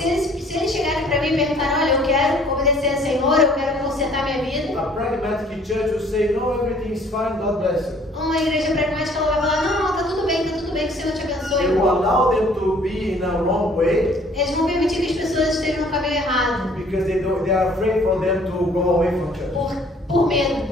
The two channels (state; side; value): normal; both; correlation 0.57